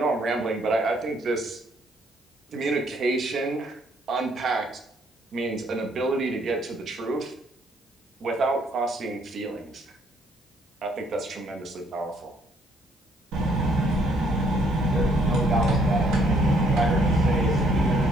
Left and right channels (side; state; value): both; normal; correlation 0.67